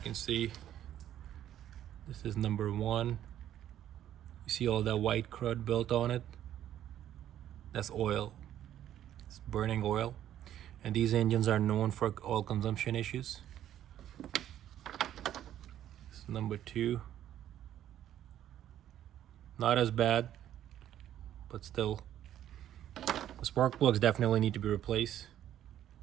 can see this is number 1. You see all that white crud built on it? That's oil. It's burning oil. And these engines are known for oil consumption issues. This is number 2. Not as bad, but still. The spark plugs definitely need to be replaced.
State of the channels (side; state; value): left; quieter; 11.4 dB